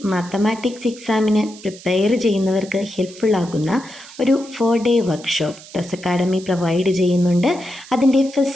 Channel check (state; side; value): noise; right; hiss, 19 dB below the sound